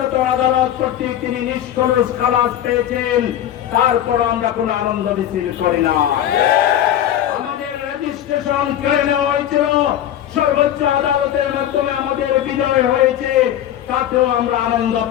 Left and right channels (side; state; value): right; quieter; 11.3 dB